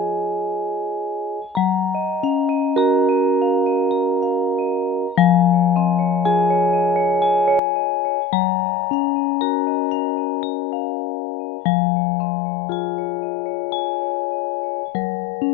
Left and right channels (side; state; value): right; drops out; at 7.6 s